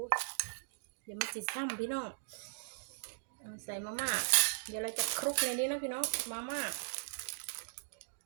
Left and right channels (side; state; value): left; silent; digital silence